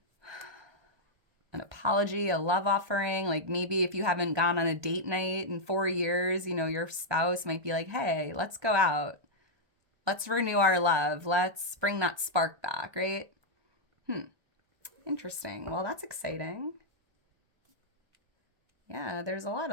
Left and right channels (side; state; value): left; late; 1.2 ms